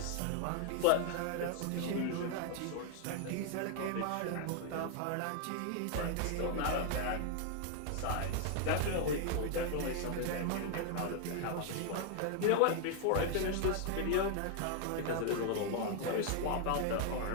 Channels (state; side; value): different; both; correlation 0.00